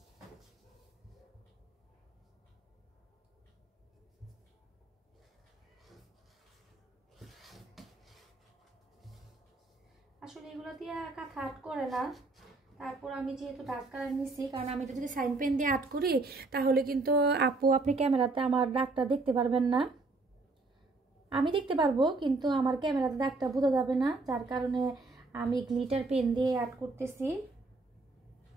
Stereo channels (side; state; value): left; quieter; 3.5 dB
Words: আসলে এগুলো দিয়ে কাঁথা আর্ট করে না। তারপর আমি যেহেতু ডার্ক কালার নিছি, কারণ আমি এটা যদি সাইন পেন দিয়ে আর্ট করি তাহলে কিন্তু আপু আপনি ক্যামেরাতে আমার দাগটা দেখতে পারবেন না। আমি দেখতে পারবো কিন্তু আমার ক্যামেরাতে দাগটা বোঝা যাবে না, যার কারণে আমি গ্লিটার পেন দিয়ে আর্ট করতেছি।